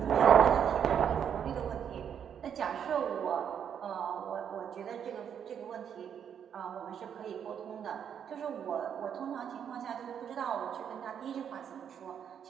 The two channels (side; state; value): left; quieter; 8.3 dB